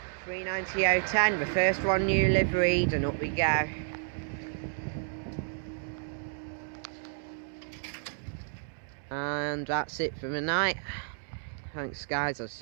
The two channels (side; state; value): left; silent; digital silence